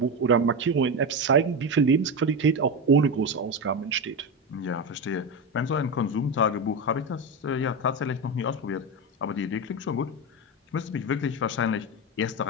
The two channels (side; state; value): both; normal; correlation 0.16